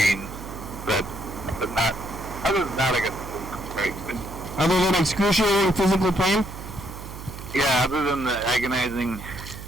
but not. Other than that, I guess it's great. Other than excruciating physical pain? Yeah, other than the agonizing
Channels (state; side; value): noise; right; hum, 12 dB below the sound